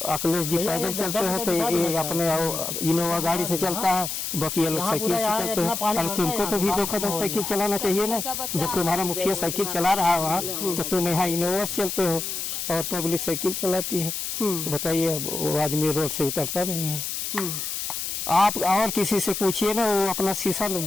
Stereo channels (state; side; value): noise; left; hiss, 4 dB below the sound